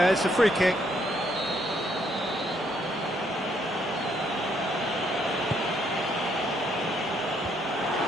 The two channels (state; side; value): normal; both; correlation 0.71